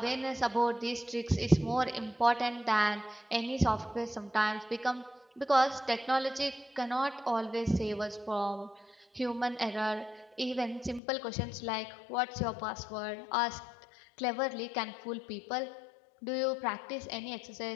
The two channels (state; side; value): drops out; right; at 11.0 s